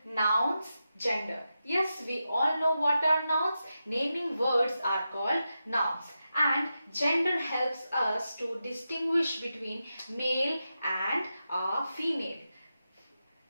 nouns, gender. Yes, we all know what are nouns. Naming words are called nouns. And gender helps us to distinguish between male and female.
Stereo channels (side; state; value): both; inverted; correlation -0.89